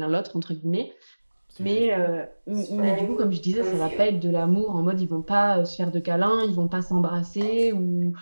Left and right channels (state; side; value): inverted; both; correlation -1.00